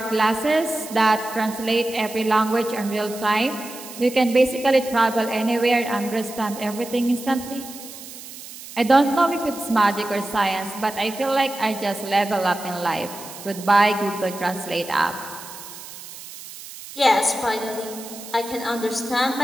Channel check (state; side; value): noise; right; hiss, 14 dB below the sound